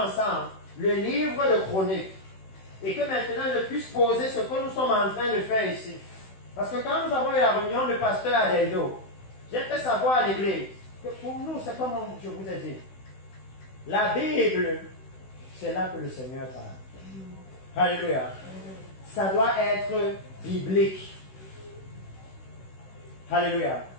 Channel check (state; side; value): late; right; 16 ms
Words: le livre de Chroniques. Et que maintenant, je puisse poser ce que nous sommes en train de faire ici. Parce que quand nous avons eu la réunion de pasteur à Deldo, j'ai fait savoir à l'église que pour nous, c'est comme je vous ai dit. La Bible, c'est là que le Seigneur parle. Alléluia. Ça doit être biblique. Alléluia.